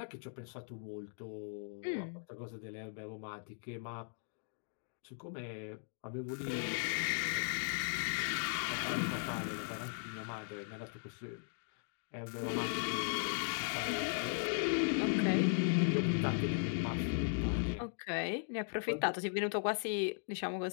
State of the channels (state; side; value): silent; right; digital silence